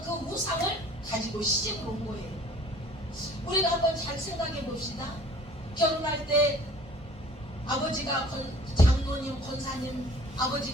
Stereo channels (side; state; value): both; normal; correlation 0.51